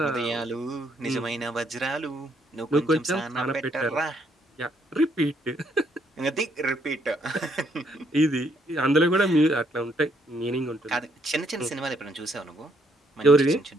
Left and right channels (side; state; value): both; normal; correlation 0.71